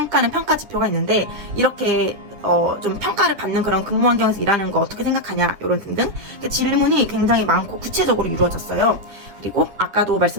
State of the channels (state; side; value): late; left; 10 ms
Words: 평가 지표가 있는데, 이렇게 좀 평가를 받는 그런 근무 환경에서 일하는 거 어떻게 생각하냐 이런 등등 질문이 굉장히 많고 구체적으로 이루어졌어요. 그리고 아까도